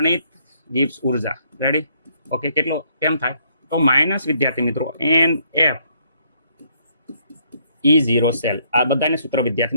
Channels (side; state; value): both; inverted; correlation -0.69